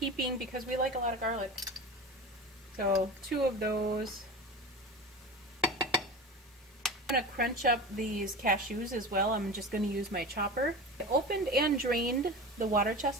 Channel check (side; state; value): both; normal; correlation 0.30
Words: because we like a lot of garlic. So 2 of those. I'm going to crunch up these cashews as well. I'm just going to use my chopper. I opened and drained the water